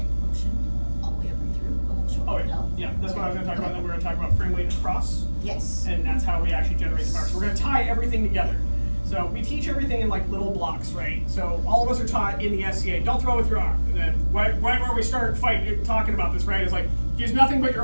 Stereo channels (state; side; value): inverted; both; correlation -1.00